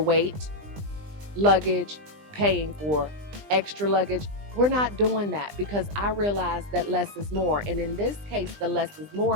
luggage, paying for extra luggage. We're not doing that because I realize that less is more. And in this case, the less is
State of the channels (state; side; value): late; left; 20 ms